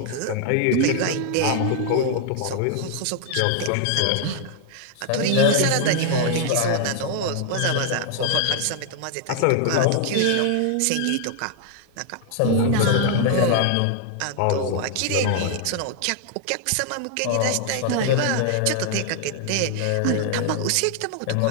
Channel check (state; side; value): different; both; correlation 0.00